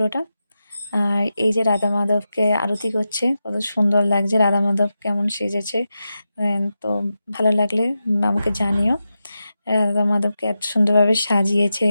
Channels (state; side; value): inverted; both; correlation -0.90